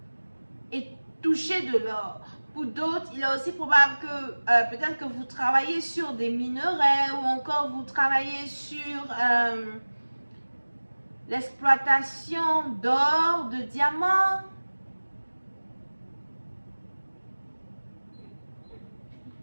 et toucher de l'or. Pour d'autres, il est aussi probable que peut-être que vous travaillez sur des minerais ou encore vous travaillez sur l'exploitation d'or, de diamants.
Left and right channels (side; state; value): both; inverted; correlation -1.00